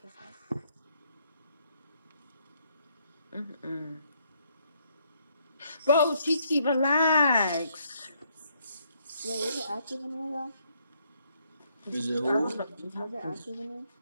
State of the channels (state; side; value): inverted; both; correlation -0.71